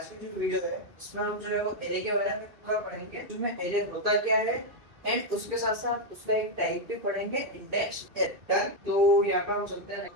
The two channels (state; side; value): late; left; 2.8 ms